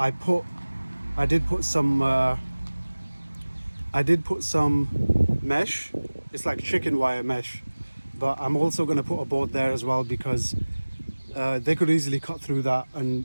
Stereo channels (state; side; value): inverted; both; correlation -1.00